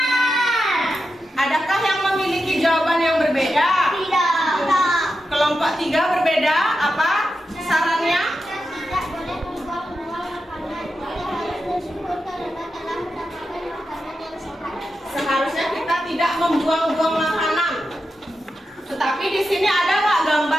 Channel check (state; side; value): normal; both; correlation 0.89